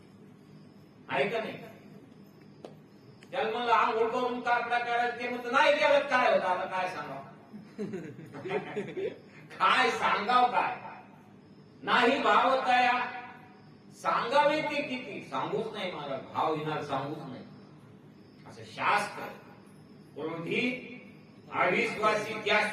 आहे का नाही. त्याला म्हणलं आंघोळ करून कापडा करायचं, ते म्हणतं नाही केलं काय होतं. आता काय सांगाव काय सांगाव काय नाही भावतया सांगावे ते किती, सांगूच नाही मला भाव येणार, सांगूच नाही असं शास्त्र. क्रोधी अविश्वासी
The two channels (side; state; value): both; identical; correlation 1.00